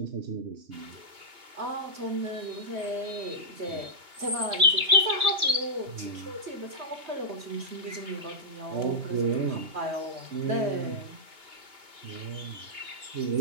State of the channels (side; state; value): left; late; 2.8 ms